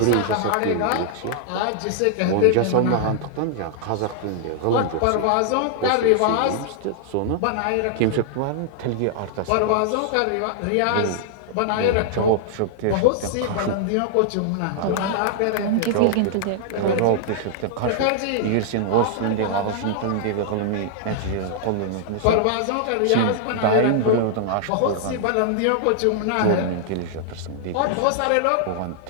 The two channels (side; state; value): both; different; correlation -0.01